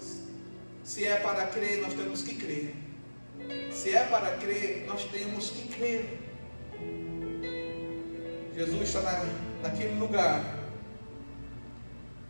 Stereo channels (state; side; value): inverted; both; correlation -1.00